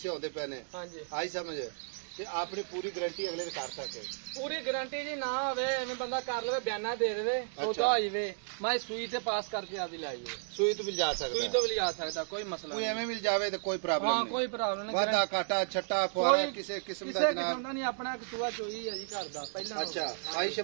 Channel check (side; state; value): left; silent; digital silence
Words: होंदे पे ने। हाँ जी। आई समझ ते अपनी पूरी गारंटी अगले कर सके। पूरी गारंटी जी ना होवे एवं बंदा कर ले बयाना दे दे सौदा हो जाए। मैं सुई ते पास करके आदि लाई है। सुई तो मिल जा सकता, सुई तो भी आ सकता, कोई मसला कोई नहीं। एवं मिल जावे तो कोई प्रॉब्लम हाँ नहीं। कोई प्रॉब्लम नहीं। वादा काटा छट्टा फुआरा किसी किस्म किसी दा किस्म जनाब। का नहीं, अपना सुआ चोई है जी घर दा पहला। अच्छा भाई